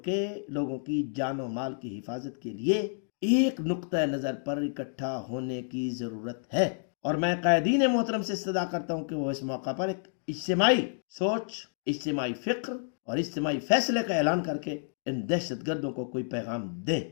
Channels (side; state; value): right; silent; digital silence